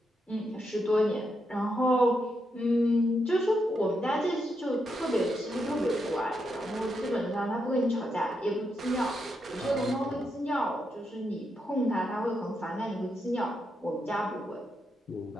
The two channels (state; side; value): normal; both; correlation 0.82